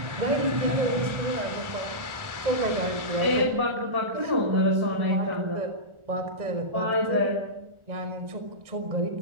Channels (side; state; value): left; late; 1.4 ms